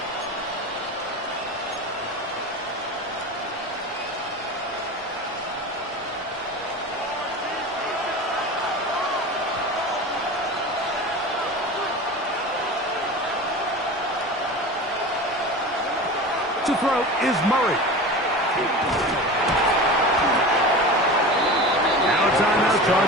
To throw is Murray. Now a timeout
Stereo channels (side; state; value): both; normal; correlation 0.31